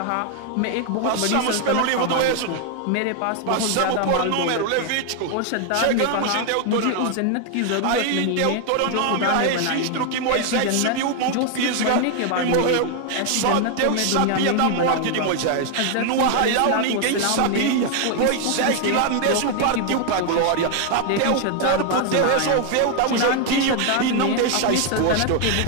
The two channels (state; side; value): different; both; correlation 0.00